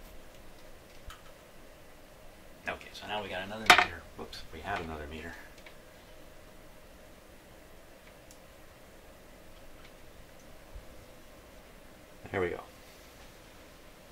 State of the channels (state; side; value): identical; both; correlation 1.00